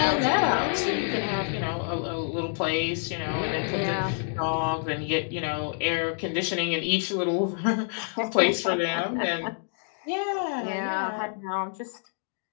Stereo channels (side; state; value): right; silent; digital silence